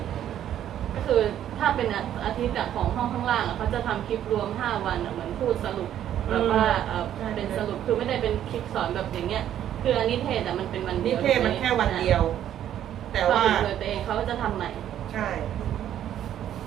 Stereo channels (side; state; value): left; quieter; 10.9 dB